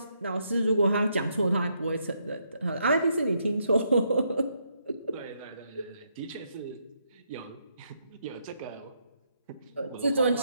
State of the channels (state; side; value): inverted; both; correlation -0.77